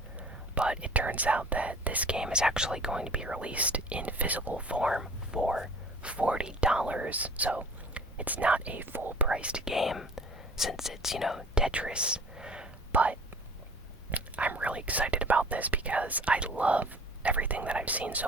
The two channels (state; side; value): normal; both; correlation 0.46